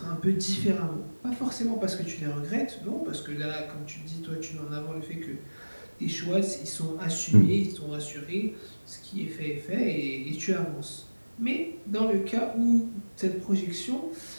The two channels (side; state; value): both; inverted; correlation -1.00